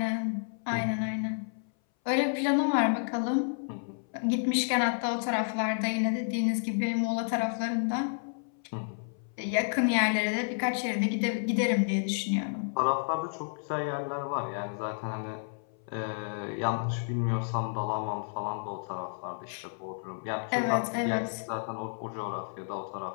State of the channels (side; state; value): right; silent; 57 dB below the other